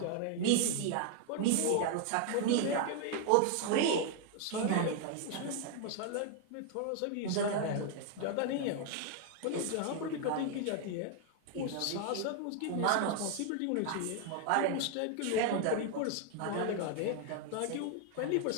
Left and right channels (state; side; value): different; both; correlation 0.00